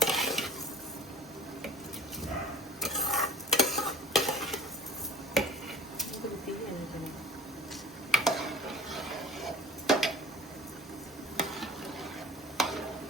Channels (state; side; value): normal; both; correlation 0.45